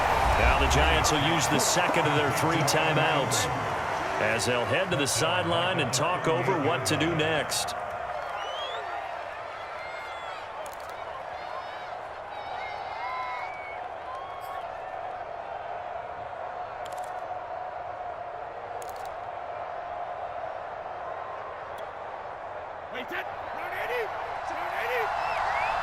Now the Giants will use the second of their 3 timeouts as they'll head to the sideline and talk over what to do next.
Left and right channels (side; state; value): both; identical; correlation 1.00